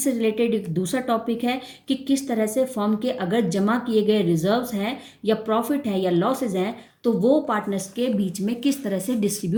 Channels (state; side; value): identical; both; correlation 1.00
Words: रिलेटेड एक दूसरा टॉपिक है कि किस तरह से फर्म के अगर जमा किए गए रिजर्व्स हैं या प्रॉफिट है या लॉसेज हैं तो वो पार्टनर्स के बीच में किस तरह से